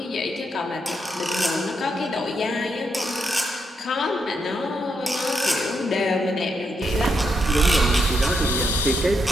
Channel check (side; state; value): both; normal; correlation 0.80